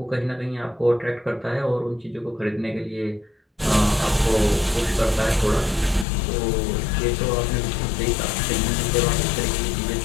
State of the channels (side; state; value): right; drops out; at 6.1 s